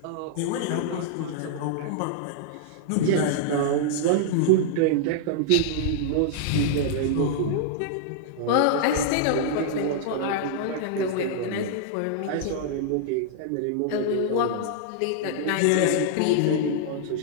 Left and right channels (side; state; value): both; different; correlation -0.01